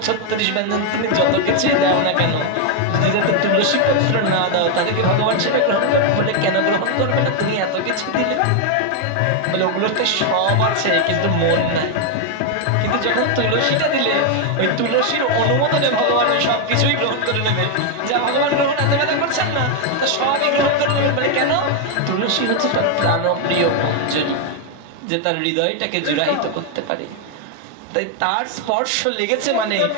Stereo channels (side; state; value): both; different; correlation 0.01